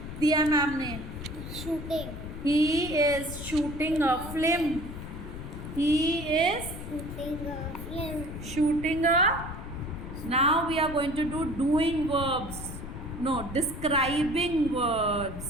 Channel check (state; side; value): noise; left; rumble, 9 dB below the sound